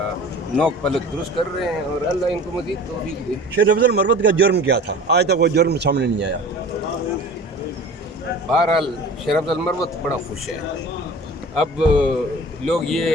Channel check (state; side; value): normal; both; correlation 0.41